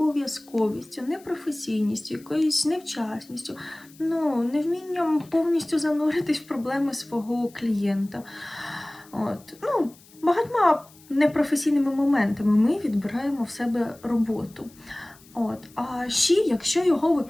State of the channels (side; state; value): left; noise; hiss, 25 dB below the sound